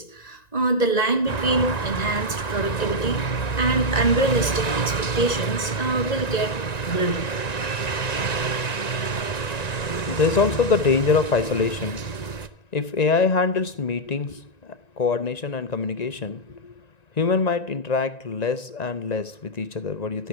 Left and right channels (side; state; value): right; late; 1.9 ms